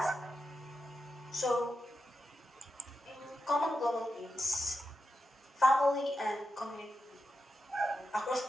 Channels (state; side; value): normal; both; correlation 0.88